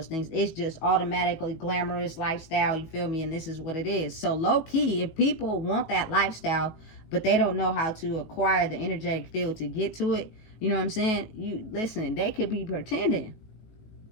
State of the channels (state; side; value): late; right; 18 ms